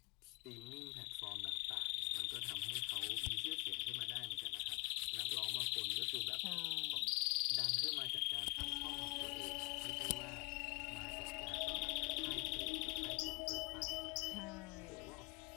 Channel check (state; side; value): quieter; right; 29.1 dB